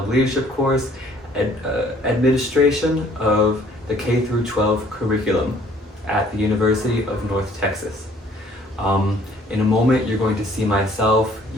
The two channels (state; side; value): normal; both; correlation 0.58